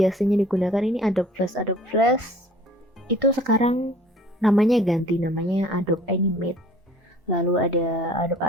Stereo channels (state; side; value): normal; both; correlation 0.51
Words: digunakan ini Adobe Flash. Adobe Flash itu sekarang namanya ganti, namanya Adobe Animate. Lalu ada